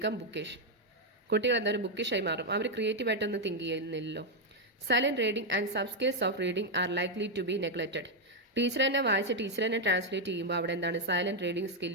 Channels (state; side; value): normal; both; correlation 0.01